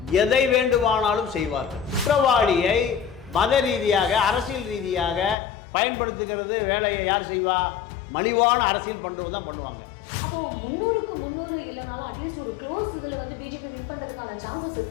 எதை வேண்டுமானாலும் செய்வார்கள். குற்றவாளியை மத ரீதியாக அரசியல் ரீதியாக பயன்படுத்துகிறது வேலையை யார் செய்வா? மலிவான அரசியல் பண்றது தான் பண்ணுவாங்க. அப்போ 300க்கு 300 இல்லைனாலும் அட்லீஸ்ட் ஒரு க்ளோஸ் இதில் வந்து பிஜேபி வின் பண்றதுக்கான சான்சஸ்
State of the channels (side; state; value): right; drops out; at 5.4 s